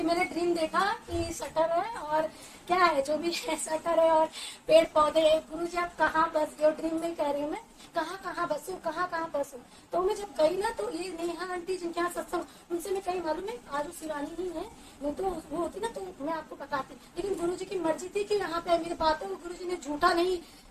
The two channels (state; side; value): identical; both; correlation 1.00